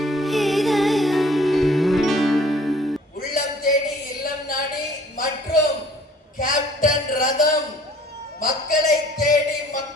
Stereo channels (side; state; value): both; normal; correlation 0.54